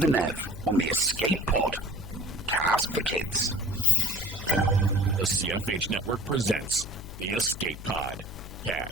Nev on the Escape Pod. Cast for Kids. The CFH Network presents the Escape Pod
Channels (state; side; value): noise; left; hum, 12 dB below the sound